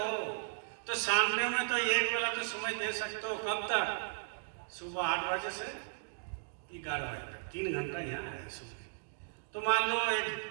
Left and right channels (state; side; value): silent; left; digital silence